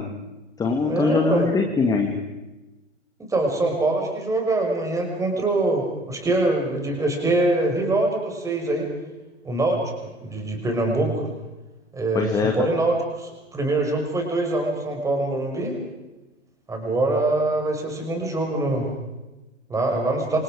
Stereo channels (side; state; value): both; normal; correlation 0.58